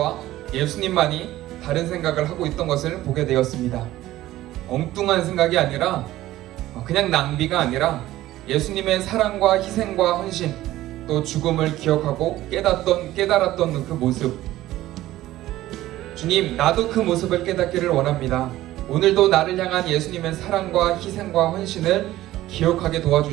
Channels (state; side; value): quieter; left; 15.4 dB